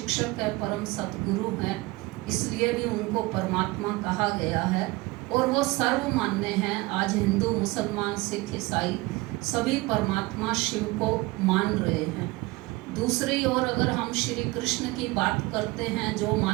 है, परम सतगुरु हैं, इसलिए भी उनको परमात्मा कहा गया है। और वो सर्वमान्य हैं। आज हिंदू, मुसलमान, सिख, ईसाई सभी परमात्मा शिव को मान रहे हैं। दूसरी ओर अगर हम श्री कृष्ण की बात करते हैं, जो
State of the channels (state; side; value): quieter; left; 21.8 dB